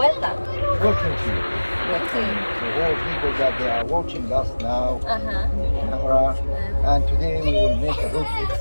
Welcome to you. Okay. To all people that they are watching us now Uh-huh. in the camera. And today we will make a road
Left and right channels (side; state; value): both; inverted; correlation -1.00